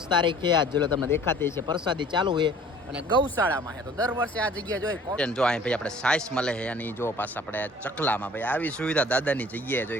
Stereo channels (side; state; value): both; normal; correlation 0.50